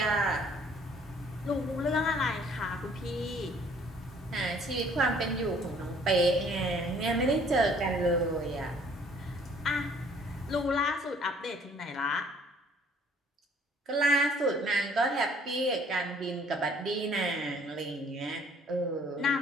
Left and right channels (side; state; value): both; normal; correlation 0.58